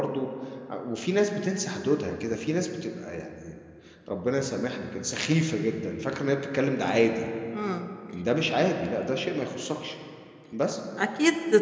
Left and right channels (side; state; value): both; identical; correlation 1.00